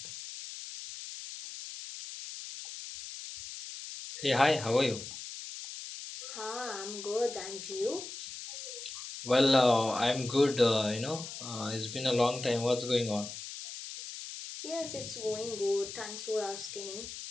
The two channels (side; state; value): left; noise; hiss, 10 dB below the sound